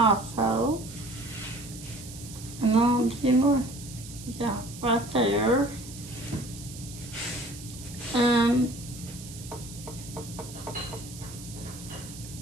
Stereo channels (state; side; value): noise; right; hiss, 14 dB below the sound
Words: And then a few more. Yeah, right there. And